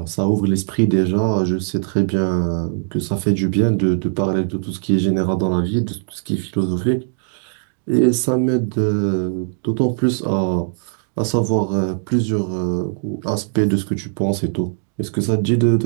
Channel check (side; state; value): left; silent; digital silence